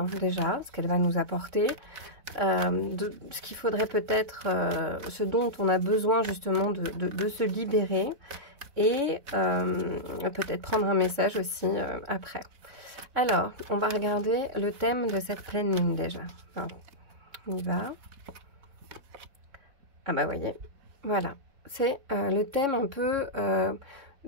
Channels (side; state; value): left; late; 3.6 ms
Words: déjà, ce qu'elle va nous apporter, ce qu'il faudrait peut-être, ce dont on a besoin justement de se libérer et peut-être prendre un message aussi après. Alors, on va regarder le thème de cette pleine lune déjà. Alors, on y va. Ah bah voyez, voilà. C'est le thème un peu